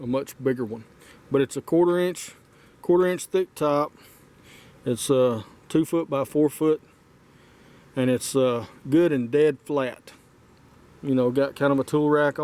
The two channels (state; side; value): identical; both; correlation 1.00